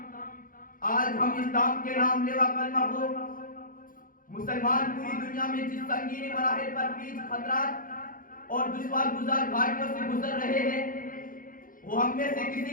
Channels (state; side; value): late; right; 0.40 ms